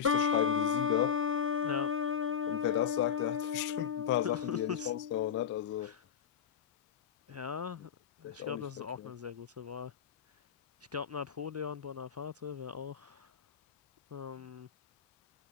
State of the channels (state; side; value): quieter; right; 7.9 dB